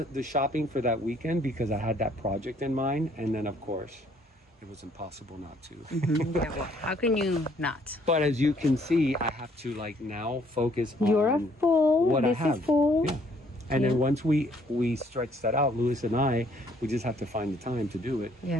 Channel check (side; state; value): both; normal; correlation 0.64